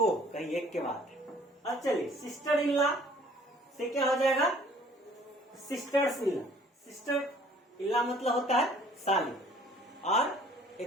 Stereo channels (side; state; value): both; normal; correlation 0.55